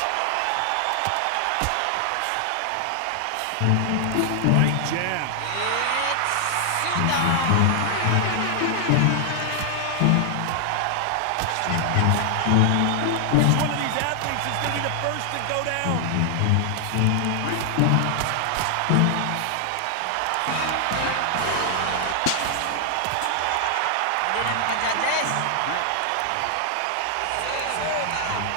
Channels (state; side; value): different; both; correlation 0.00